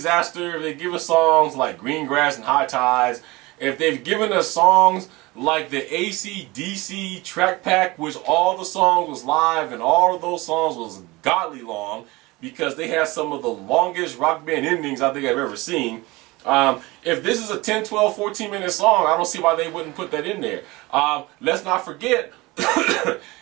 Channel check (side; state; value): left; quieter; 22.2 dB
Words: if they give us songs like Green Grass and High Tides, if they've given us songs like the AC/DC track pack, which all the songs was live and all of those songs was godly long, because they have some of the longest Rock Band endings I think I've ever seen. If this is a 10, 12, 14-minute song, I don't see why they wouldn't put that in there. Let's not forget,